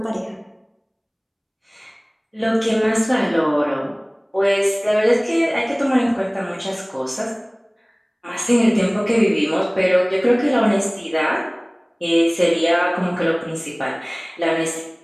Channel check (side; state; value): both; identical; correlation 1.00